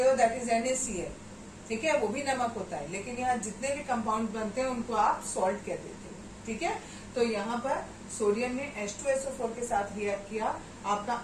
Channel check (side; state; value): both; identical; correlation 1.00